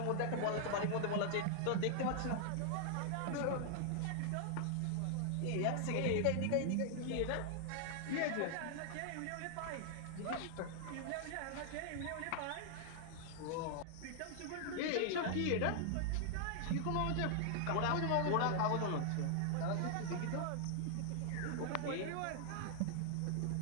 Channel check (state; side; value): different; both; correlation 0.00